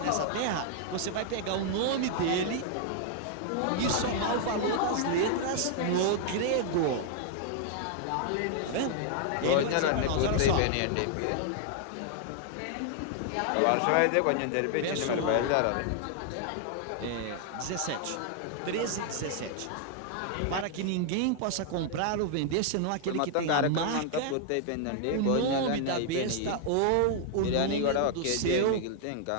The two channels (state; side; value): different; both; correlation 0.00